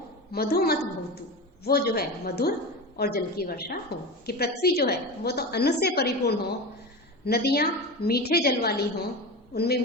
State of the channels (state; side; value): normal; both; correlation 0.26